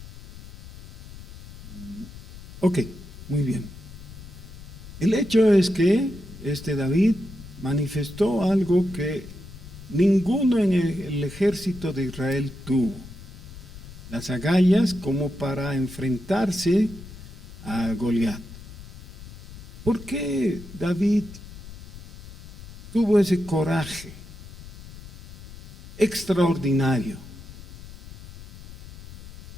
Ok, muy bien. El hecho es que David manifestó algo que ninguno en el ejército de Israel tuvo. Las agallas como para enfrentarse a Goliat. ¿Por qué David tuvo ese coraje extraordinario?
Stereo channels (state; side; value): noise; left; rumble, 15 dB below the sound